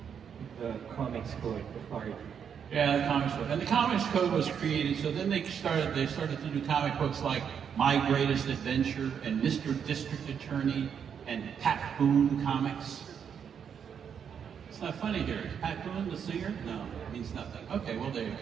The Comics Code, the PART. Yeah, the Comics Code. And the Comics Code was created, so then they started to do comic books like My Greatest Adventure and Mr. District Attorney and Pat Boone Comics. It's not funny here. Is Pat Boone the singer? No, it means nothing. Okay, well there you go.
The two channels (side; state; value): left; quieter; 7.6 dB